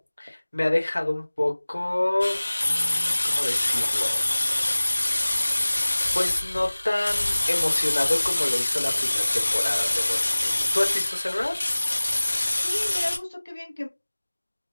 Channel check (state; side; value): inverted; both; correlation -1.00